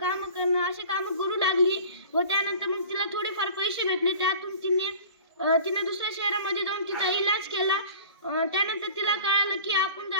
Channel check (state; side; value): inverted; both; correlation -0.42